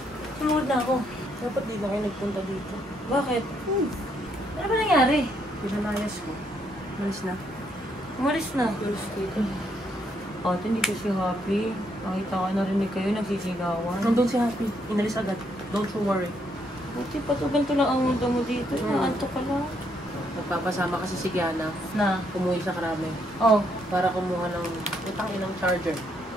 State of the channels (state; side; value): normal; both; correlation 0.73